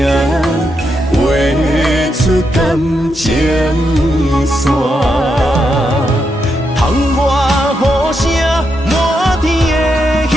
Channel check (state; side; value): normal; both; correlation 0.83